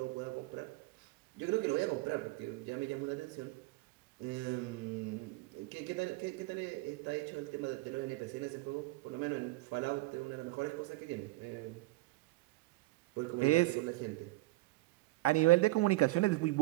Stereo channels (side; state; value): left; quieter; 20.6 dB